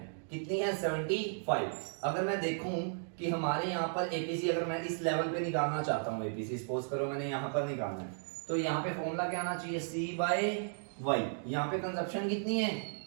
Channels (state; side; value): silent; left; digital silence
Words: कितनी है, 75। अगर मैं देखूं कि हमारे यहाँ पर एपीसी, अगर मैं इस लेवल पे निकालना चाहता हूँ एपीसी, सपोज करो मैंने यहाँ पर निकालना है, तो यहाँ पे फॉर्मूला क्या आना चाहिए, सी बाय वाई। यहाँ पे कंजप्शन कितनी है,